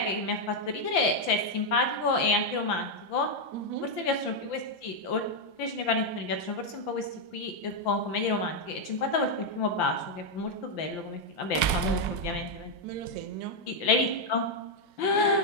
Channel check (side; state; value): right; late; 4.7 ms